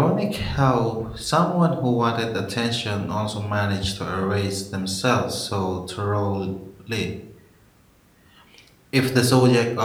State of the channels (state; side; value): identical; both; correlation 1.00